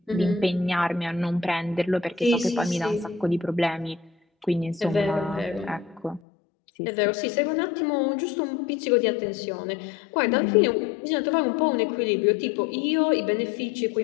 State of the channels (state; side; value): drops out; right; at 6.2 s